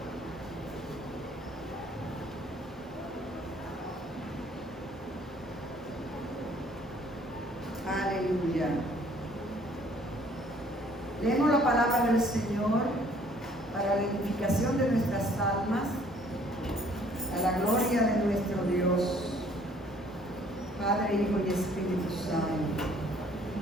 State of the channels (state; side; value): normal; both; correlation 0.59